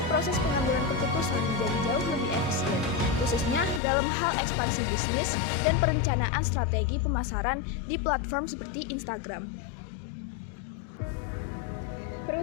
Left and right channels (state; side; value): drops out; right; at 3.8 s